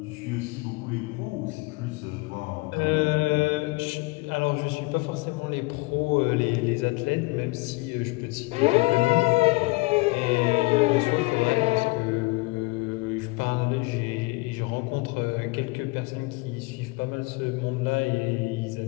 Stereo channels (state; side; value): quieter; right; 24.8 dB